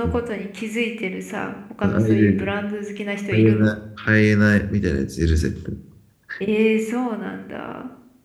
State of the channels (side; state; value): both; identical; correlation 1.00